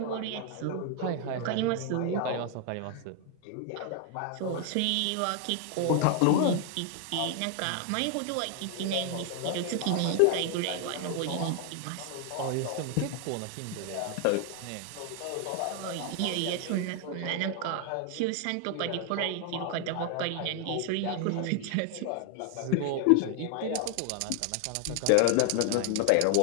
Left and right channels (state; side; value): different; both; correlation 0.00